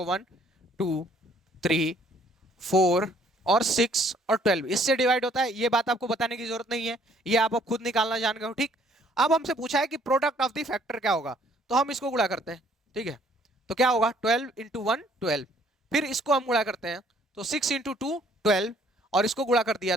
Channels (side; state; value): both; normal; correlation 0.62